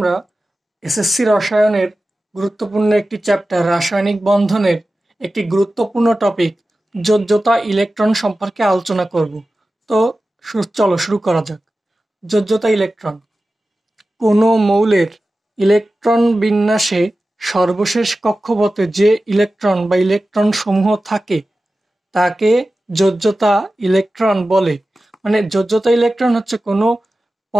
এসএসসি রসায়নের গুরুত্বপূর্ণ একটি চ্যাপ্টার রাসায়নিক বন্ধনের একটি গুরুত্বপূর্ণ টপিক যোজ্যতা ইলেকট্রন সম্পর্কে আলোচনা করব। তো চলো শুরু করা যাক। যোজ্যতা ইলেকট্রন কোনো মৌলের ইলেকট্রন বিন্যাসে সর্বশেষ কক্ষপথে যে ইলেকট্রন বা ইলেকট্রন সমূহ থাকে তাকে যোজ্যতা ইলেকট্রন বলে। মানে যোজ্যতা ইলেকট্রন হচ্ছে কোনো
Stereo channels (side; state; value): both; normal; correlation 0.95